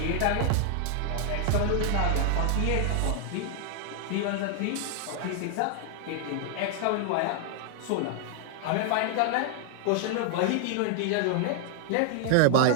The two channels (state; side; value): different; both; correlation 0.00